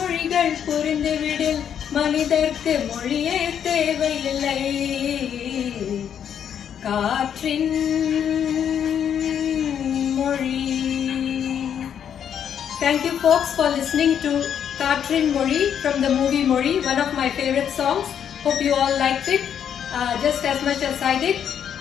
புரிந்துவிடில் மனிதர்க்கு மொழியே தேவையில்லை. காற்றின் மொழி. Thank you folks for listening to Katrin Mori from the movie Mori, one of my favorite songs. Hope you all liked it just as much as I did.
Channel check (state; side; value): quieter; right; 8.7 dB